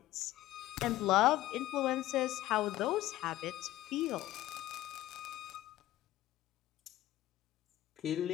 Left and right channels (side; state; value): right; quieter; 15.3 dB